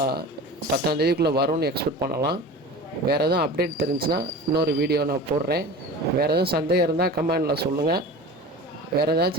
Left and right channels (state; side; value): normal; both; correlation 0.35